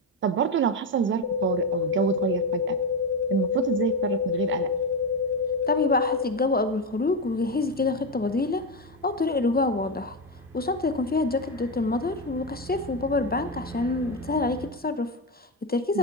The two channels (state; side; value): normal; both; correlation 0.12